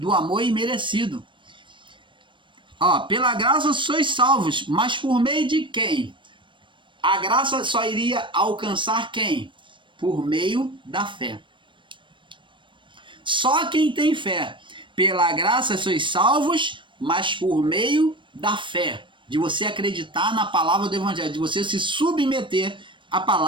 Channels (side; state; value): left; late; 0.24 ms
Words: amor imerecido. Ó, pela graça sois salvos, mas por meio de quem? A graça só iria alcançar quem? Por meio da fé. Só quem tem fé. Pela graça sois salvos, mas por meio da fé. De você acreditar na palavra do Evangelho, de você se submeter à